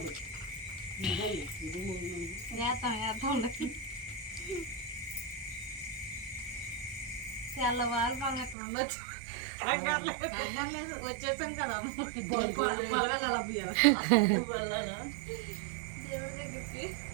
అల్ల వాళ్ళు మనం ఎక్కడ ఉండొచ్చు వచ్చేసాం కదా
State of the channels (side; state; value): left; drops out; at 8.6 s